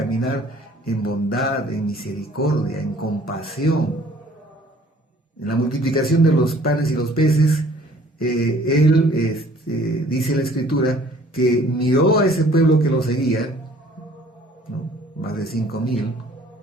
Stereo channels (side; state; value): both; normal; correlation 0.55